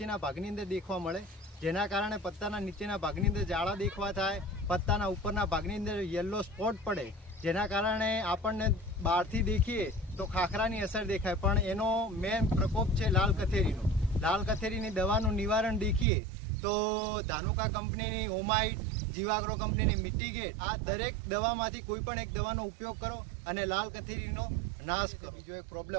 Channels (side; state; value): left; drops out; at 16.1 s